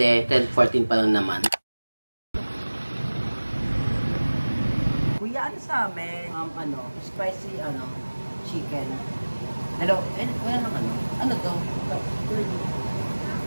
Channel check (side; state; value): both; inverted; correlation -1.00